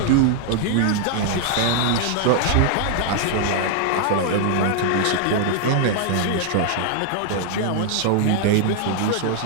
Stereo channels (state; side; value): different; both; correlation 0.00